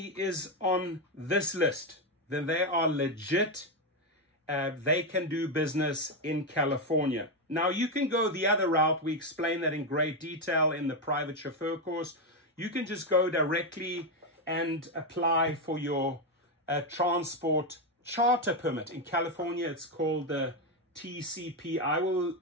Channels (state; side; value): normal; both; correlation 0.07